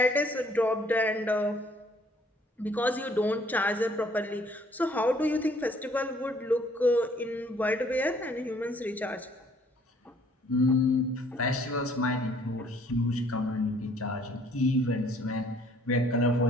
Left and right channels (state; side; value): normal; both; correlation 0.60